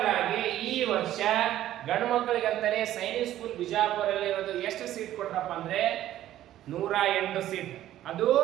ಆಗಿ ಈ ವರ್ಷ ಗಂಡು ಮಕ್ಕಳಿಗೆ ಅಂತಾನೆ ಸೈನಿಕ್ ಸ್ಕೂಲ್ ಬಿಜಾಪುರಲ್ಲಿ ಇರೋದು ಎಷ್ಟು ಸೀಟ್ ಕೊಟ್ರಪ್ಪ ಅಂದ್ರೆ 108 ಸೀಟ್, ಅದು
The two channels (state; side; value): quieter; left; 13.1 dB